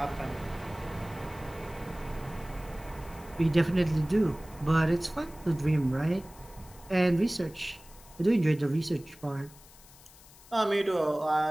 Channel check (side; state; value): left; noise; hiss, 22 dB below the sound